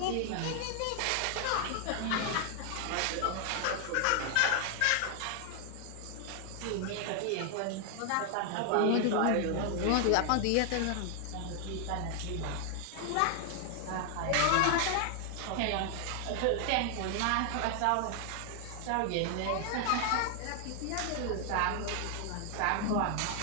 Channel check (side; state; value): both; different; correlation 0.00